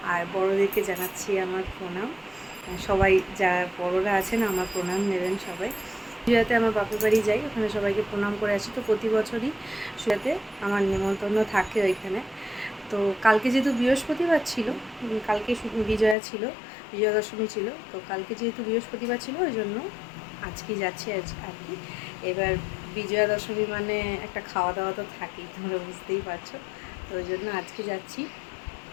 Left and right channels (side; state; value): right; drops out; at 16.2 s